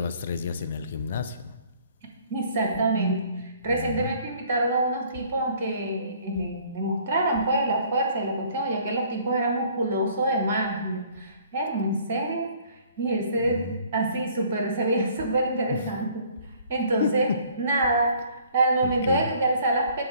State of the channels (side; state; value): both; inverted; correlation -0.57